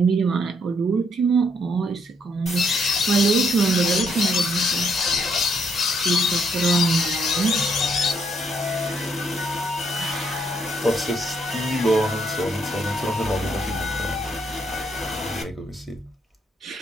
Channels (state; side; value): normal; both; correlation 0.73